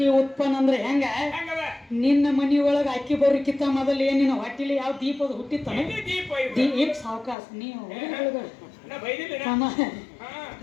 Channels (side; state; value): right; drops out; at 7.4 s